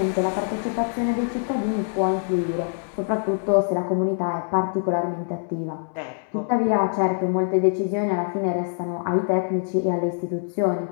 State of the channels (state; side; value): silent; right; 62 dB below the other